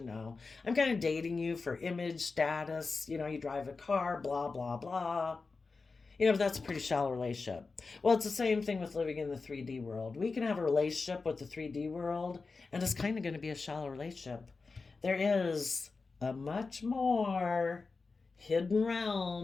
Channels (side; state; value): right; quieter; 4.2 dB